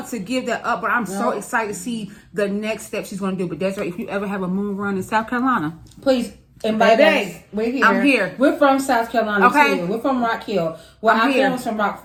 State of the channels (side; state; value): both; identical; correlation 1.00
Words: to give that up, but I'm so excited to see the next step she's going to do. But Desiree, if you ever have a moon run in South Carolina, please invite us. We're here. I'm here. We're from South Carolina too. We're from Rock Hill. Well, our family's from